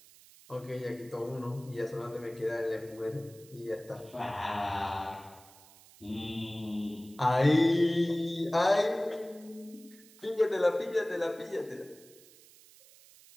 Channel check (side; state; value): right; noise; hiss, 23 dB below the sound